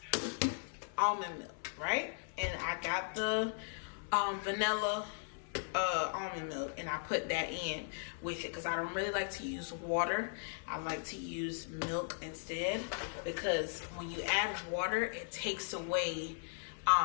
almond milk, right? And I got the vanilla almond milk, and I put that in with it because I don't really like to use water. I like to use milk instead, because when you add water, it takes away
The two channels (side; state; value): right; silent; 53 dB below the other